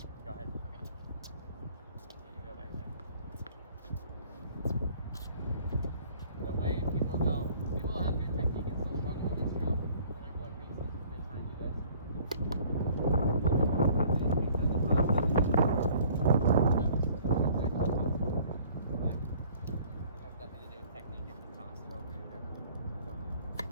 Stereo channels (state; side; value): inverted; both; correlation -0.54